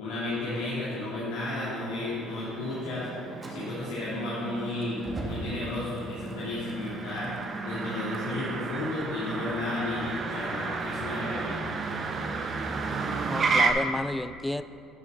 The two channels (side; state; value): both; normal; correlation 0.66